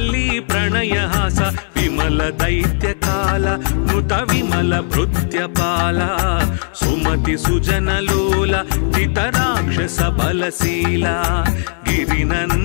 प्रणयहास विमल दैत्य काल नुत विमल भृत्यपाल सुमति सुजन लोल चितराक्षस बलशीला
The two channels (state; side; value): silent; right; digital silence